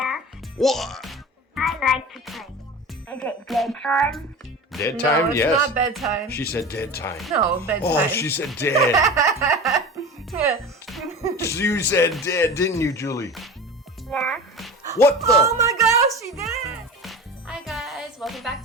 What? I like to play. Is it bedtime? Dead time? No, it's Yes. not bedtime. She said dead time. No, bedtime. Oh, she said dead. You said dead, didn't you, Julie? Yeah. What the? Oh my gosh, she did! Hi guys, welcome back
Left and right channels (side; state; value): both; normal; correlation 0.32